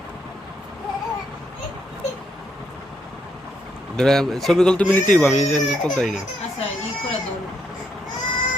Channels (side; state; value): both; normal; correlation 0.76